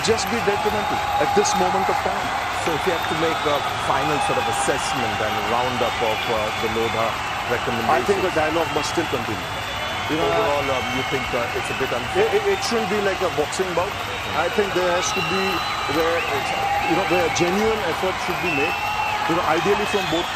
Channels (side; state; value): both; identical; correlation 1.00